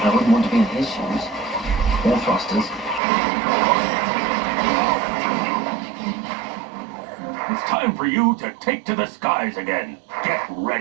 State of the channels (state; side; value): drops out; left; at 3.0 s